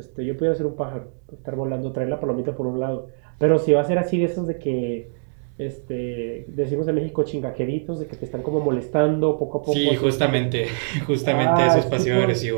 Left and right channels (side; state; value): left; silent; 63 dB below the other